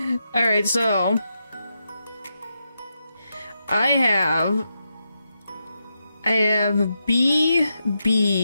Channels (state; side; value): inverted; both; correlation -0.85